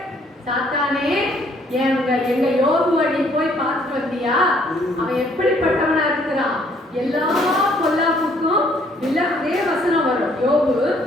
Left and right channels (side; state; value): both; normal; correlation 0.64